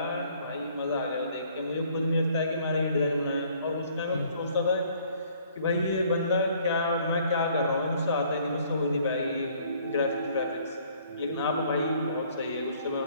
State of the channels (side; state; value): both; inverted; correlation -0.60